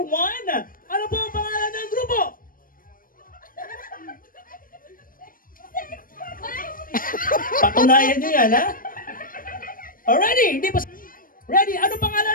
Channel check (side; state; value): right; late; 0.41 ms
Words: ano po ang pangalan ng grupo? Patunayan nyo yan, ha? Already, hindi pa... Ready? Ano